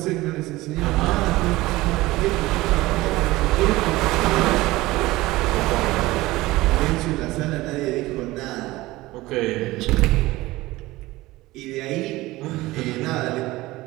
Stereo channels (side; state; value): left; quieter; 19.0 dB